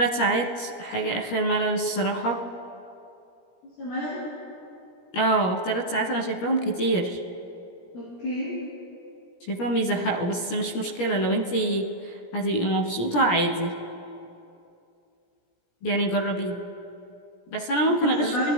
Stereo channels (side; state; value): right; late; 17 ms